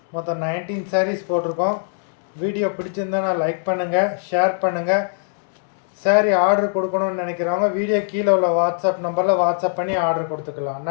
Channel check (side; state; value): right; silent; 65 dB below the other